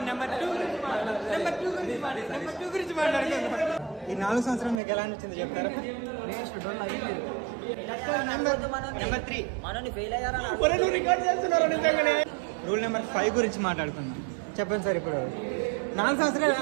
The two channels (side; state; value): left; drops out; at 4.8 s